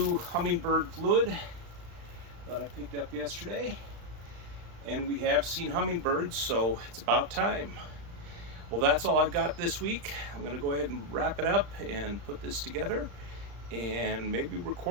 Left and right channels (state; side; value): late; left; 35 ms